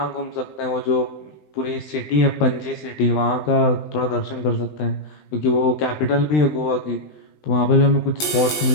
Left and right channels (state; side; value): late; right; 20 ms